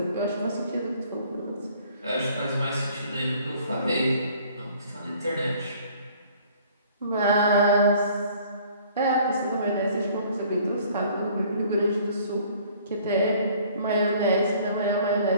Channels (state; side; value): inverted; both; correlation -0.55